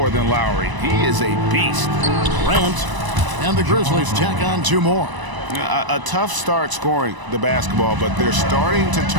than Lowry. He is a beast. Grant and the Grizzlies tack on 2 more. A tough start scoring the basketball, but they're starting to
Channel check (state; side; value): late; left; 1.0 ms